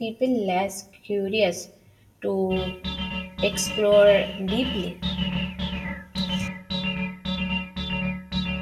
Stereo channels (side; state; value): both; identical; correlation 1.00